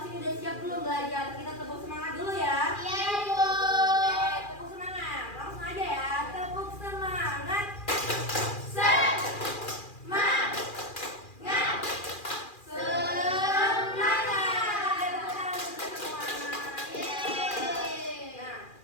ini udah siap belum belajar? Kita tepuk semangat dulu ya. Iya Bu. Oke, tepuk semangat, langsung aja ya, tepuk semangat. Semangat. Semangat. Tepuk tangan untuk semua. Yeay. Nah,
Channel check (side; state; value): right; late; 2.4 ms